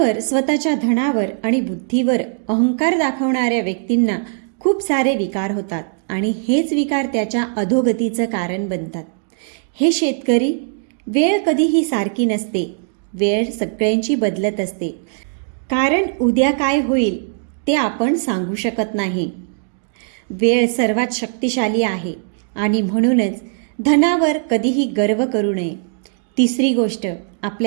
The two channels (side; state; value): left; silent; digital silence